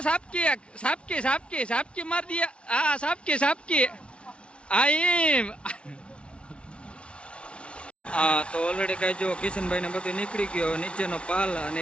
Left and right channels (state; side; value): late; right; 0.059 ms